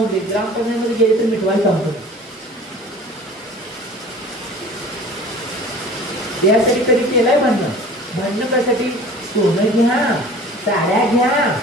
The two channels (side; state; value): both; normal; correlation 0.44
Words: ग्रामपंचायतीमध्ये गेले तर मिटवायला सांगतो, यासाठी कधी केलंय भांडणं कशासाठी, सोनं घ्या, साड्या घ्या,